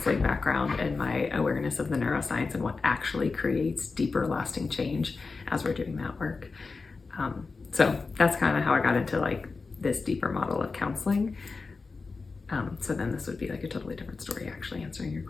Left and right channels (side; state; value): right; quieter; 4.2 dB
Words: background and my awareness of the neuroscience and what actually creates deeper, lasting change as we're doing that work. So that's kind of how I got into this deeper model of counseling. So then this would be a totally different story, actually, answering your